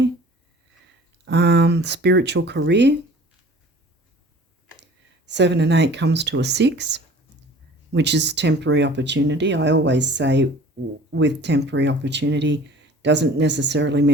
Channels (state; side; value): normal; both; correlation 0.47